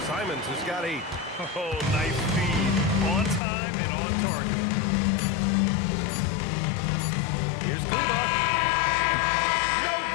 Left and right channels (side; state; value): right; drops out; at 3.4 s